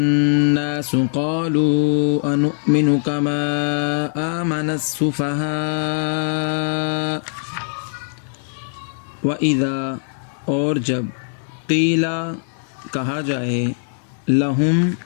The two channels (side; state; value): right; silent; 59 dB below the other